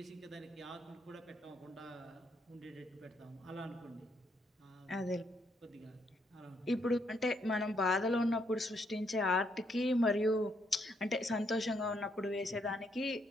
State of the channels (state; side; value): normal; both; correlation 0.74